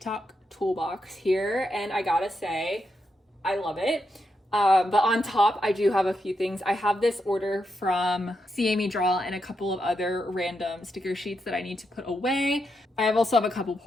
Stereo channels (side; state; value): both; normal; correlation 0.83